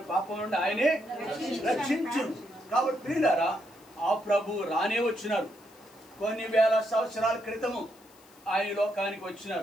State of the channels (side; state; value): left; noise; hiss, 27 dB below the sound